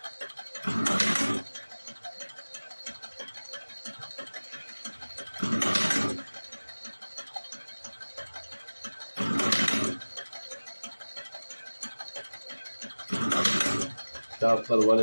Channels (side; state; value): both; inverted; correlation -1.00